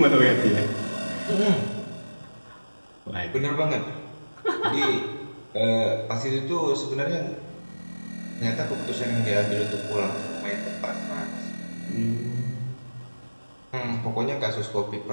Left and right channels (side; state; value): both; inverted; correlation -1.00